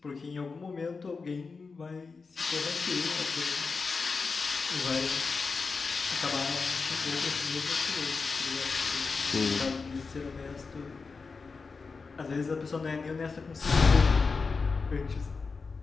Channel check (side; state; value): right; quieter; 4.6 dB